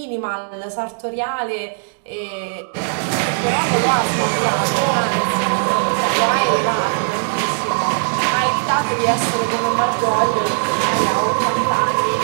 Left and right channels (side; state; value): left; silent; digital silence